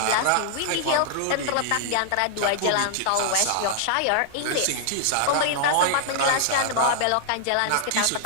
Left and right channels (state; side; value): different; both; correlation -0.01